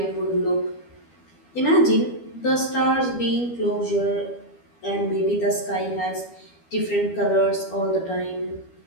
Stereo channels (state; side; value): late; right; 12 ms